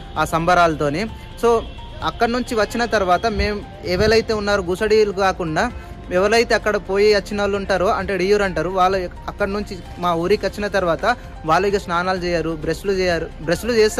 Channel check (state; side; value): identical; both; correlation 1.00